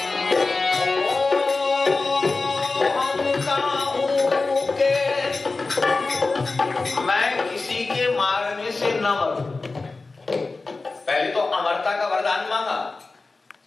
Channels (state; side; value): quieter; right; 3.7 dB